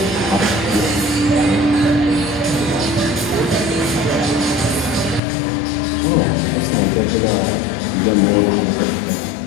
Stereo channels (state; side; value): drops out; right; at 5.2 s